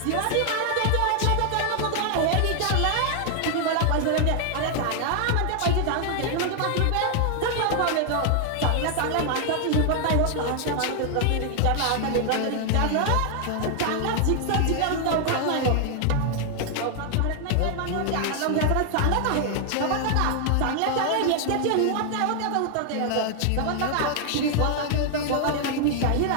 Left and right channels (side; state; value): both; different; correlation 0.00